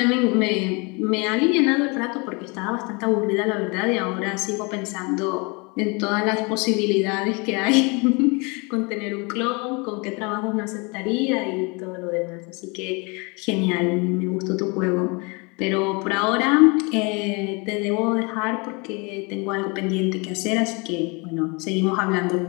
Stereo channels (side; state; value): right; quieter; 29.8 dB